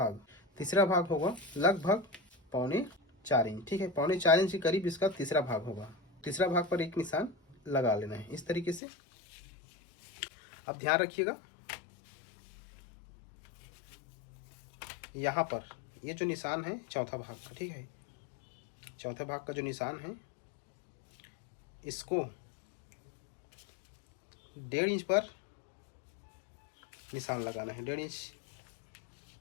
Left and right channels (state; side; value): drops out; right; at 8.8 s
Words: भाग होगा लगभग 3.25 इंच, ठीक है। 3.25 इंच के करीब इसका तीसरा भाग होगा। तीसरा भाग पर एक निशान लगा लेना है इस तरीके से। अब ध्यान रखिएगा, यहाँ पर ये जो निशान है चौथा भाग का, ठीक है, चौथे भाग का जो निशान है इसको 1.5 इंच पर निशान लगाना है। 1.5 इंच